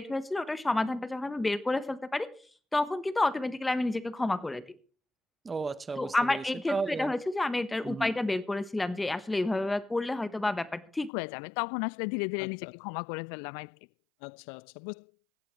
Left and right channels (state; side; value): drops out; right; at 11.1 s